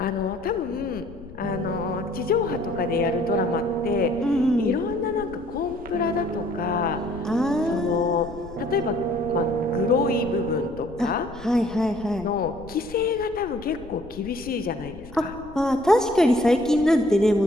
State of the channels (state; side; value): noise; left; rumble, 18 dB below the sound